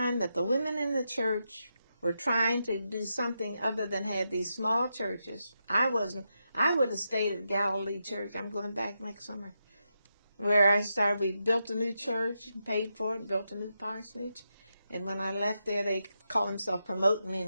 that the women in the church were trying to do something other than have these small churches. I would have stayed at Galilee Church. I'm going back next summer. Where I started, we built a new church, paid for it, built a new parsonage. And when I left there, they called themselves promoting me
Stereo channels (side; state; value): both; inverted; correlation -0.85